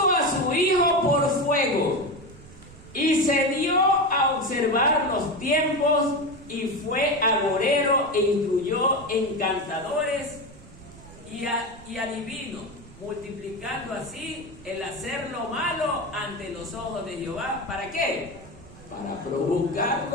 a su hijo por fuego, y se dio a observar los tiempos, y fue agorero e instruyó encantadores y adivinos, multiplicando así el hacer lo malo ante los ojos de Jehová. ¿Para qué? Para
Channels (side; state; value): right; noise; rumble, 19 dB below the sound